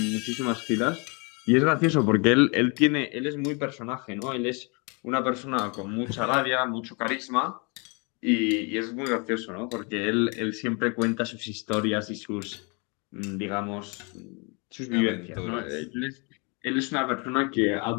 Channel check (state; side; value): quieter; right; 32.0 dB